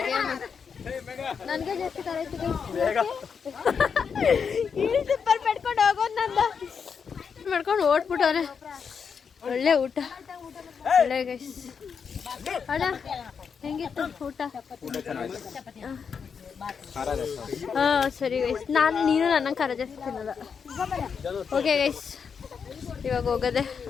ನನ್ಗೆ ಜಾಸ್ತಿ ಖಾರ ಆಯ್ತು. ಇಲ್ಲಿ ಸಿಂಪಲ್ ಪಡ್ಕೊಂಡು ಹೋಗೋದು ನಂದು ಮಾಡ್ಕೊಂಡು ಓಡ್ಬಿಟ್ಟವ್ರೆ. ಒಳ್ಳೆ ಊಟ, ಒಳ್ಳೆ ಗೈಸ್. ಅಣ್ಣ ಹೆಂಗಿತ್ತು ಊಟ? ಹಾ ಸರಿ ಗೈಸ್. ನೀನು ನನ್ನ ಖಾರ ಜಾಸ್ತಿ ತಿನ್ನಲ್ಲ. ಓಕೆ ಗೈಸ್, ಇವಾಗ ಹೋಗೋದೆ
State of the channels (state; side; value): quieter; right; 6.3 dB